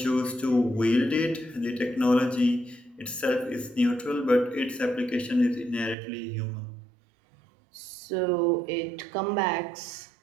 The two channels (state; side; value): drops out; left; at 6.0 s